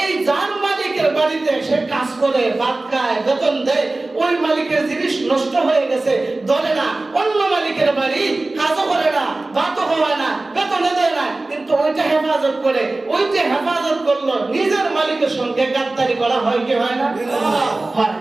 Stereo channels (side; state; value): left; quieter; 3.0 dB